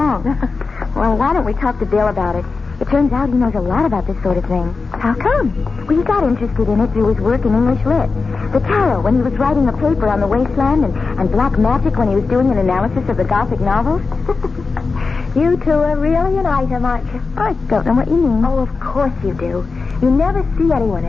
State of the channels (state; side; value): quieter; right; 4.3 dB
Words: Well, why don't we talk to Bill about it? It turns out he knows a lot about this sort of thing. How come? Well, he got interested in it through his work in English Lit. The tarot when he was writing a paper on the wasteland, and black magic when he was doing an analysis of the Gothic novels. You two are really an item, aren't you? I don't know what you mean. Oh, of course you do. You never see anyone